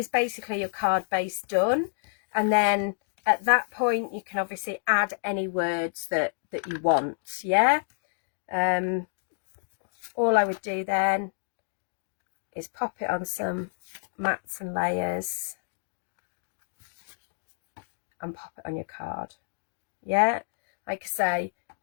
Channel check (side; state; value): right; silent; digital silence